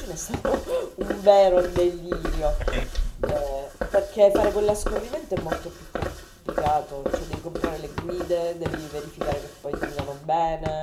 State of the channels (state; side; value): identical; both; correlation 1.00